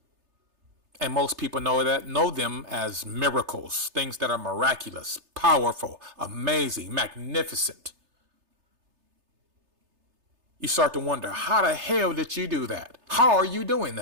And most people know them as miracles, things that are miraculous, powerful, amazing, magnificent. You start to wonder, how the hell did you do that? How are you doing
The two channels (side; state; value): left; late; 3.3 ms